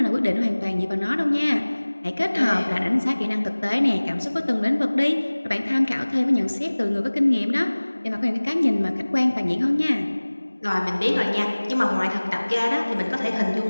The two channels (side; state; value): both; inverted; correlation -1.00